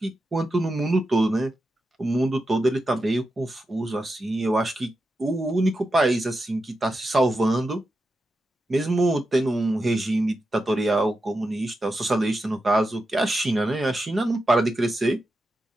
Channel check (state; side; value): normal; both; correlation 0.89